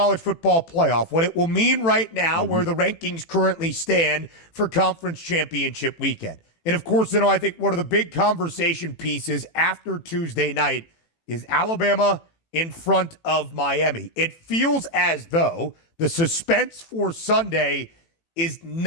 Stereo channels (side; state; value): right; late; 18 ms